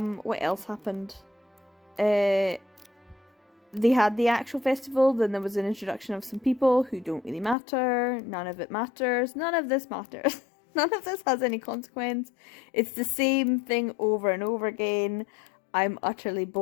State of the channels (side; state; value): right; drops out; at 7.6 s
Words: else happened? They had the actual festival, then there was an introduction of some people who don't really matter. None of it matters. None of this matters. None of this has any consequence. It's the same thing over and over again. I'm utterly